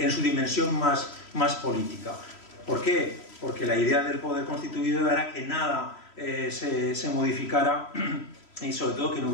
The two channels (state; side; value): late; right; 3.1 ms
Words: su dimensión más política. ¿Por qué? Porque la idea del poder constituido era que nada se modificara, y sobre todo que no